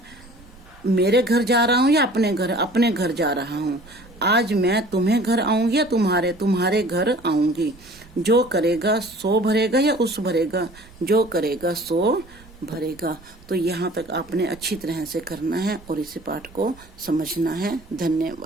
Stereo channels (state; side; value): noise; right; rumble, 23 dB below the sound